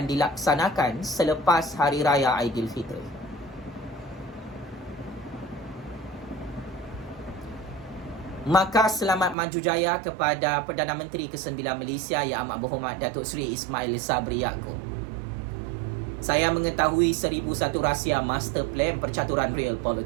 dilaksanakan selepas Hari Raya Aidilfitri. Maka selamat maju jaya kepada Perdana Menteri ke-9 Malaysia Yang Amat Berhormat Datuk Seri Ismail Sabri Yaakob. Saya mengetahui 1001 rahsia master plan percaturan real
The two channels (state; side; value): drops out; left; at 9.3 s